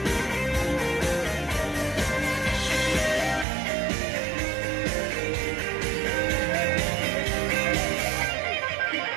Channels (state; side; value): drops out; left; at 3.5 s